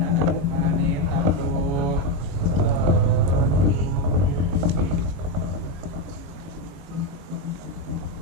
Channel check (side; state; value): left; late; 22 ms